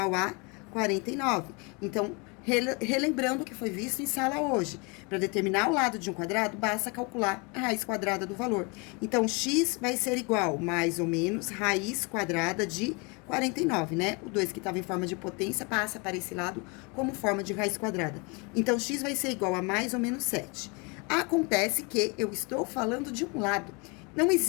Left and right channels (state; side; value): quieter; right; 30.4 dB